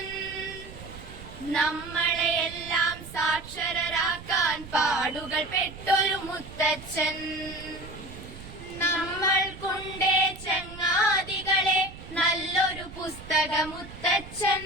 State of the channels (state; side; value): noise; right; rumble, 15 dB below the sound